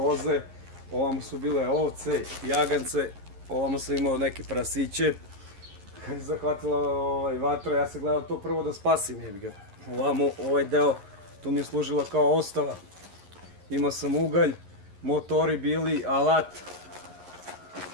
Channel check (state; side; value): late; left; 11 ms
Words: ovamo su bile ovce, jagance, ovamo sam imao neke prasiće. Kad je zahvatila vatra, ja sam gledao to prvo da spasim, jebi ga. Ovamo, ovaj deo, tu mi je služila kao ostava. Imao sam ugalj, motori bili, alat,